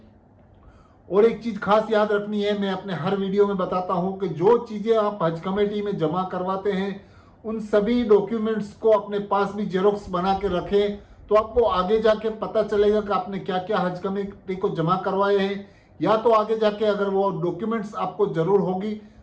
और एक चीज़ खास याद रखनी है, मैं अपने हर वीडियो में बताता हूं कि जो चीज़ें आप हज कमेटी में जमा करवाते हैं उन सभी डॉक्यूमेंट्स को अपने पास भी जेरोक्स बना के रखें। तो आपको आगे जाके पता चलेगा कि आपने क्या क्या हज कमेटी को जमा करवाए हैं, या तो आगे जाके अगर वो डॉक्यूमेंट्स आपको ज़रूर होगी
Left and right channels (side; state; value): both; identical; correlation 1.00